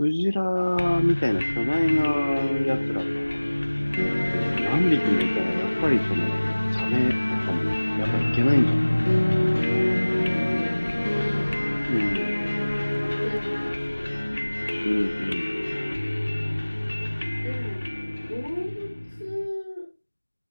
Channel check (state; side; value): inverted; both; correlation -1.00